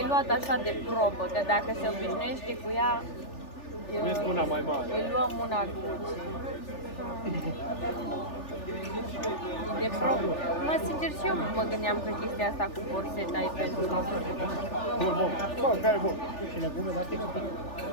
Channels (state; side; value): late; right; 3.4 ms